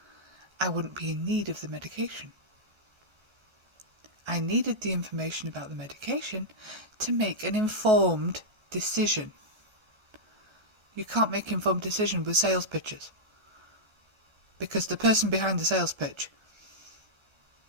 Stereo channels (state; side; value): late; left; 1.3 ms